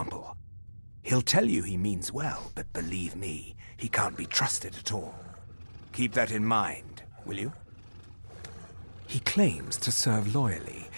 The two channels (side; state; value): both; inverted; correlation -1.00